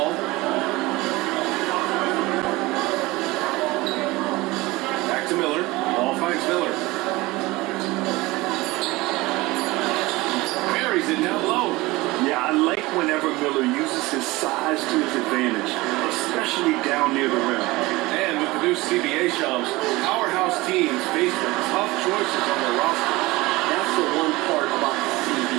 Back to Miller. whenever Miller uses his size to his advantage, especially down near the rim. And with the new CBA Shams, powerhouse teams face with tough choices on their roster. That's the one part about the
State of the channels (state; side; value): quieter; left; 20.9 dB